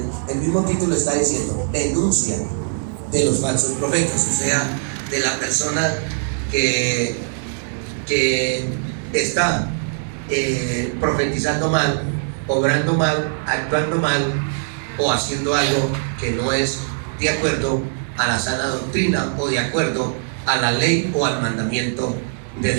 el mismo título está diciendo, denuncia de los falsos profetas, o sea, de la persona que está profetizando mal, obrando mal, actuando mal o haciendo algo que no es de acuerdo a la sana doctrina o de acuerdo a la ley o al mandamiento de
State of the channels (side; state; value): left; silent; digital silence